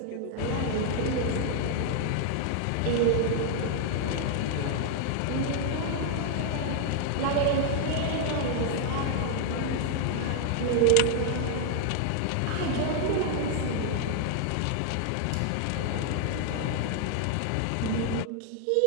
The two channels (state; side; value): different; both; correlation 0.00